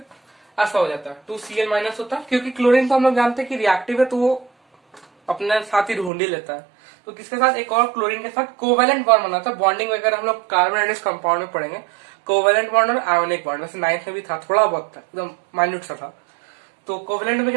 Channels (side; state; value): left; drops out; at 6.1 s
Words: ऐसा हो जाता है, 2Cl माइनस होता है, क्योंकि क्लोरीन तो हम लोग जानते हैं कि रिएक्टिव है, तो वो अपने साथ ही ढूंढ ही लेता है। तो किसके साथ, एक और क्लोरीन के साथ कोवेलेंट बॉन्ड बनाता है। बॉन्डिंग वगैरह हम लोग कार्बन कंपाउंड में पढ़ेंगे, कोवेलेंट बॉन्ड और आयोनिक बॉन्ड, वैसे 9th में भी था, थोड़ा बहुत था, एकदम माइन्यूट सा था। तो कोवेलेंट में